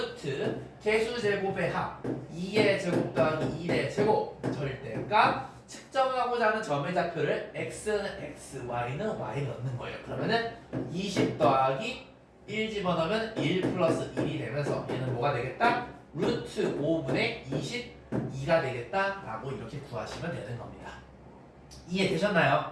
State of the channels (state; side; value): identical; both; correlation 1.00